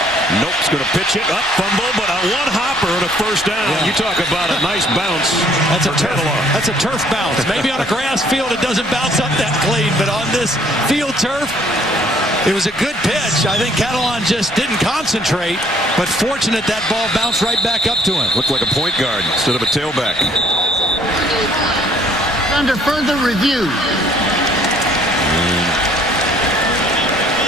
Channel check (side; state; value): both; normal; correlation 0.61